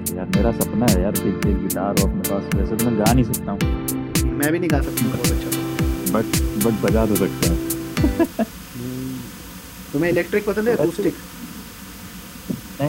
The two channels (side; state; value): both; identical; correlation 1.00